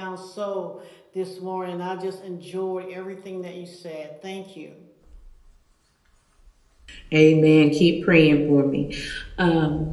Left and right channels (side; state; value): both; identical; correlation 1.00